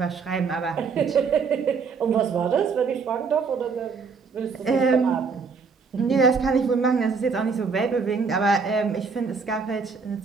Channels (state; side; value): quieter; left; 5.2 dB